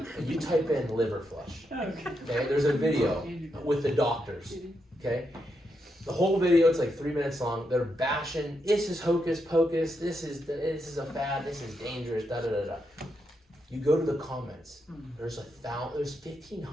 and you type in liver flush, okay, there's a video with the doctors, okay? The whole video, it's like 3 minutes long. They're bashing, this is hocus pocus, this is a fad, this is dangerous, da da da da. You go to the comments. There's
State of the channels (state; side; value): normal; both; correlation 0.82